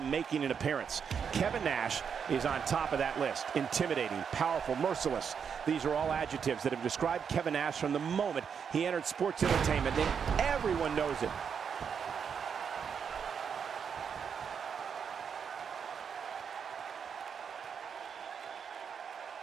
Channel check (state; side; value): quieter; left; 6.9 dB